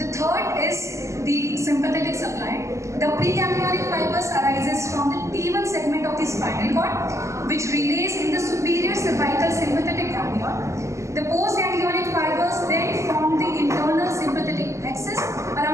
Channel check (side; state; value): left; late; 0.14 ms